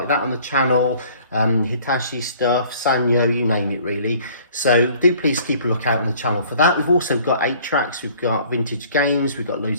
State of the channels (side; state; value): both; inverted; correlation -0.54